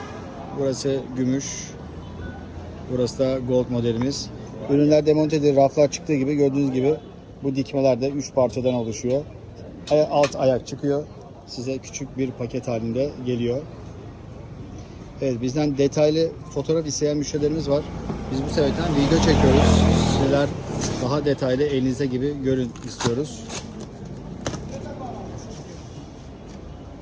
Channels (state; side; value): identical; both; correlation 1.00